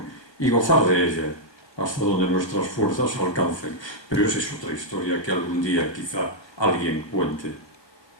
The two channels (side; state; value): right; late; 1.3 ms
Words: y gozar de ella hasta donde nuestras fuerzas alcancen. Pero esa es otra historia que algún día quizá alguien cuente.